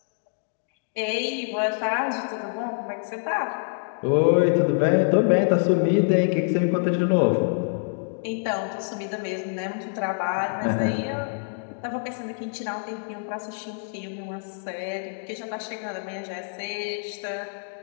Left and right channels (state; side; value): silent; right; digital silence